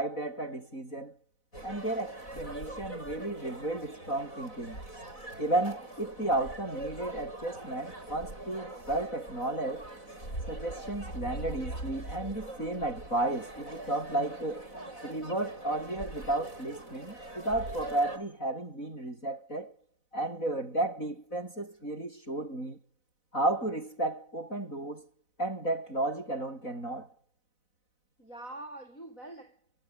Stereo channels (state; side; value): late; right; 4.0 ms